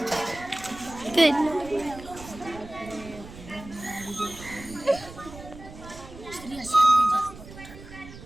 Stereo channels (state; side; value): noise; right; rumble, 16 dB below the sound